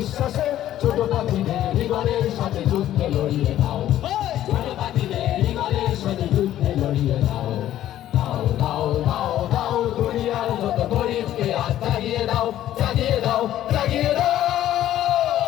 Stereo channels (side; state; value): right; quieter; 12.6 dB